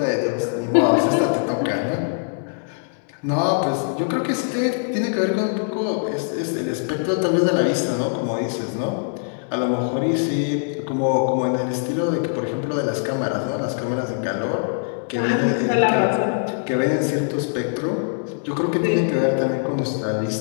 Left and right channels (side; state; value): right; silent; digital silence